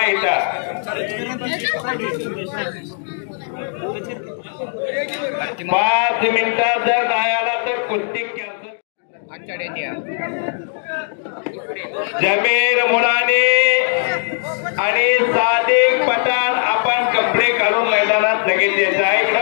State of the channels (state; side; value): silent; right; digital silence